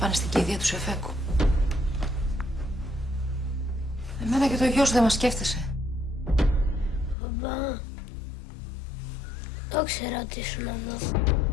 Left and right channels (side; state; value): right; drops out; at 7.2 s